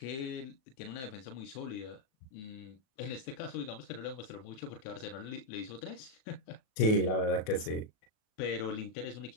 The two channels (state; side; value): late; right; 37 ms